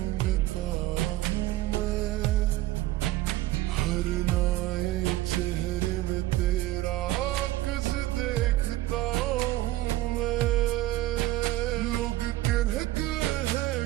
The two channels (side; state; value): left; quieter; 16.3 dB